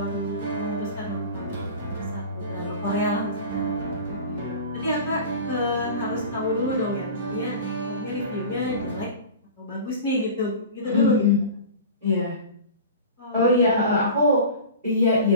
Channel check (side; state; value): both; inverted; correlation -0.36